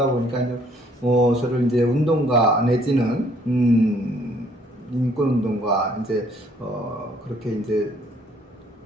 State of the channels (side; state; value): both; normal; correlation 0.63